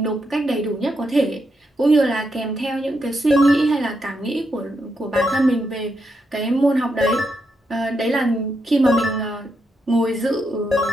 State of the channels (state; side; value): normal; both; correlation 0.82